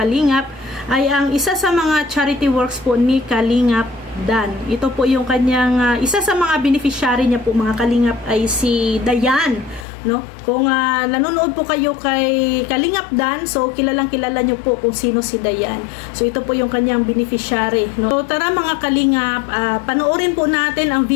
ay ang isa sa mga charity works po ni Kalingap Dan. Ito po yung kanyang isa sa mga beneficiary niya po mga kalingap ay si Dayan, no? Kung nanonood po kayo kay Kalingap Dan, so kilalang kilala niyo po kung sino si Dayan. So ito po yung kanyang beneficiary, no? So tara mga kalingap, panoorin po natin ang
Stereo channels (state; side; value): drops out; right; at 9.9 s